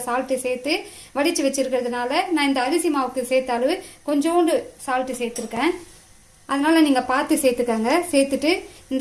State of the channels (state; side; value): identical; both; correlation 1.00